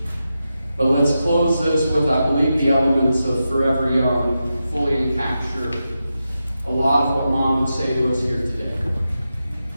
But let's close this with, I believe, the elements of Forever Young fully capture a lot of what mom would say to us here today.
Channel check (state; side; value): inverted; both; correlation -0.89